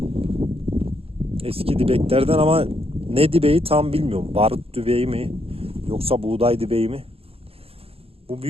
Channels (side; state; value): left; late; 0.28 ms